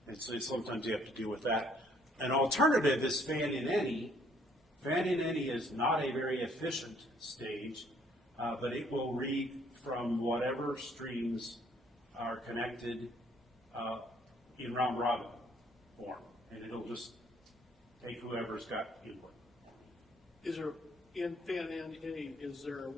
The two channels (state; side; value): normal; both; correlation 0.64